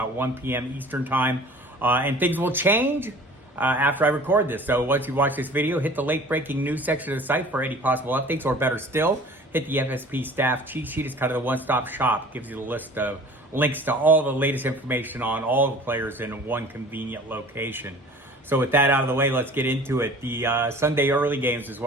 1 p.m. Eastern time, and things will change after I record this. So once you watch this video, hit the late breaking news section of the site for any possible updates, or better still, hit the FSP staff cheat sheet. It's kind of the one-stop shop. It gives you the list of links to all the latest information on all the players in one convenient location. So with that out of the way, let's get into it. The Sunday early games is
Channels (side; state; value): both; normal; correlation 0.45